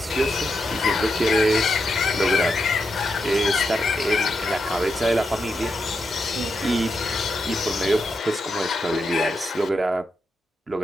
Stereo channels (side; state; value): both; normal; correlation 0.85